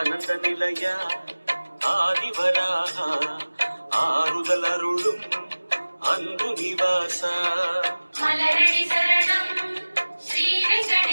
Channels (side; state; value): both; inverted; correlation -1.00